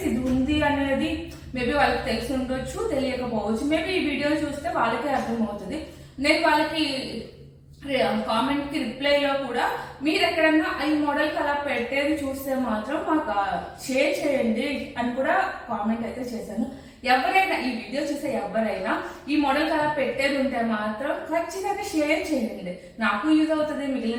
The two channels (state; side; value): identical; both; correlation 1.00